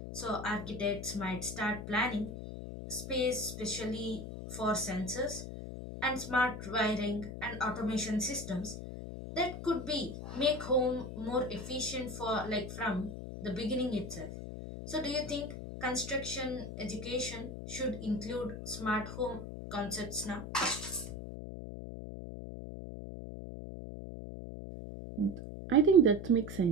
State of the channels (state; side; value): noise; left; hum, 8 dB below the sound